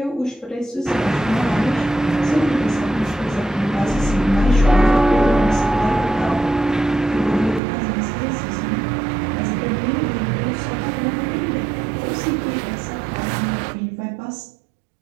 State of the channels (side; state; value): left; drops out; at 7.6 s